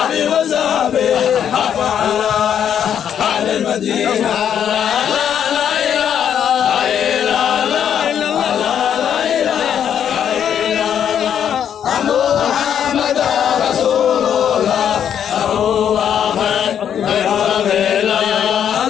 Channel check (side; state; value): right; quieter; 9.0 dB